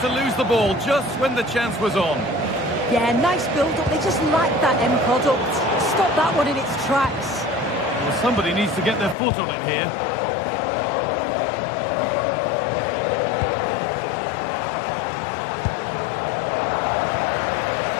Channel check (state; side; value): drops out; right; at 9.2 s